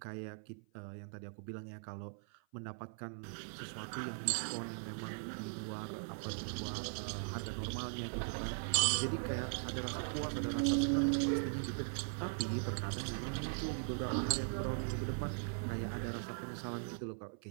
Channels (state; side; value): silent; left; 51 dB below the other